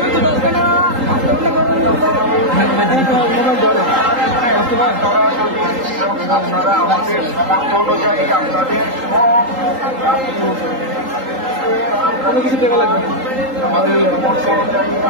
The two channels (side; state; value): left; late; 3.8 ms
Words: আপনারা আমাদের সামর্থ্য অনুযায়ী আপনাদের সব কিছু দেওয়া লাগবে আমাদের সামর্থ্য অনুযায়ী